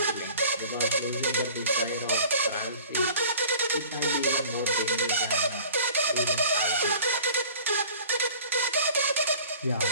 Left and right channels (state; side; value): inverted; both; correlation -0.46